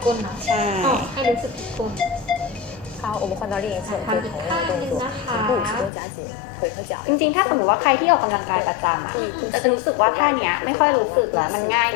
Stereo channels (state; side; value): drops out; right; at 5.9 s